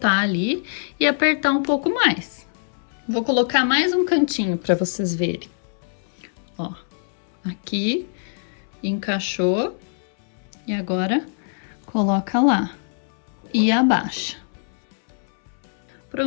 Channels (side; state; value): right; silent; 63 dB below the other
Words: ali e apertar um pouco mais. Vou colocar mais um cantinho para vocês verem. Ó, aqui encaixou e agora coloca lá e abaixa.